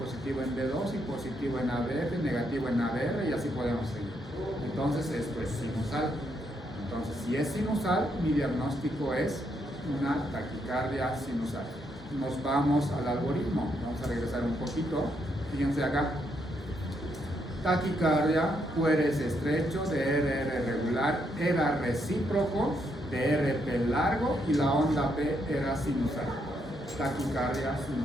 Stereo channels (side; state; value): both; normal; correlation 0.77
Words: en D2 y positivo en ABF, negativo en ABR y así podemos seguir. Entonces esto es sinusal. Entonces si es sinusal, mi diagnóstico es una taquicardia sinusal. Nos vamos al algoritmo. Vamos a regresar un poquito. Fíjense acá. Taquicardia, QRS estrecho, de RR regular, era recíproco, de RP largo y la onda P era sinusal. Taquicardia